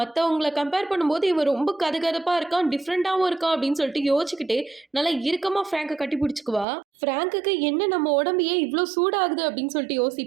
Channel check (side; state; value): left; drops out; at 6.7 s